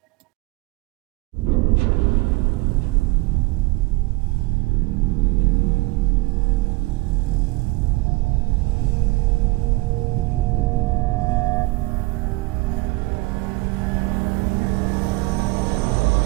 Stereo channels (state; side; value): quieter; left; 23.3 dB